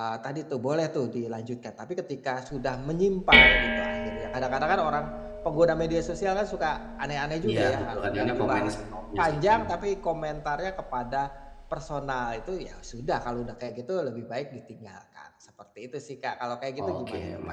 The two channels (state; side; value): identical; both; correlation 1.00